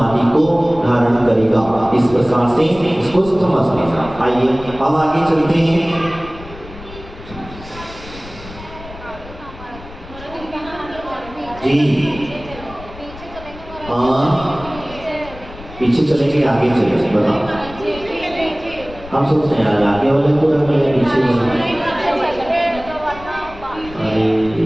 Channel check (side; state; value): left; noise; rumble, 16 dB below the sound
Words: को धारण करेगा। इस प्रकार से इसको समझना। आइए अब आगे चलते हैं। जी पीछे चलेंगे आगे चलेंगे बताओ। हम सोचते हैं यार आगे वाले को रख ले पीछे अरे